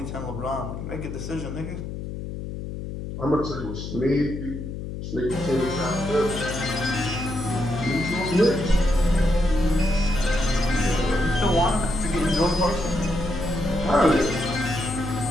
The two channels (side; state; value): left; noise; hum, 7 dB below the sound